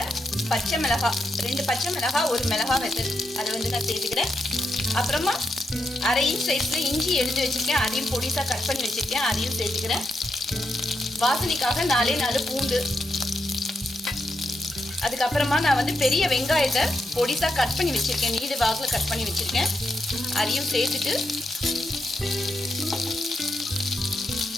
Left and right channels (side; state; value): both; normal; correlation 0.83